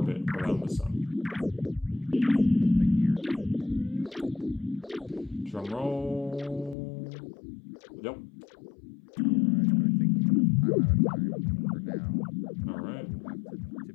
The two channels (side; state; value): right; drops out; at 6.8 s